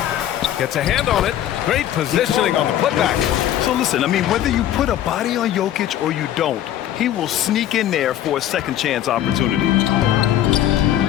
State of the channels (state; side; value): quieter; right; 11.7 dB